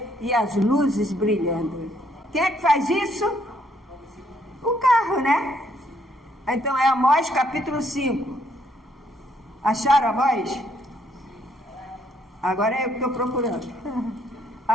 e as luzes brilhando. Quem é que faz isso? O carro, né? Então é Amós capítulo 5. Acharam Amós? Agora é eu que estou procurando.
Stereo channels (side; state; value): both; normal; correlation 0.69